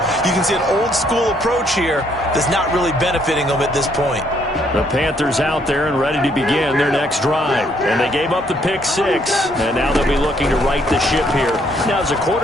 you can see an old school approach here that's not really benefiting them at this point. The Panthers out there and ready to begin their next drive. And they gave up the pick 6. And now they'll be looking to right the ship here. Now, as a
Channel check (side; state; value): both; normal; correlation 0.69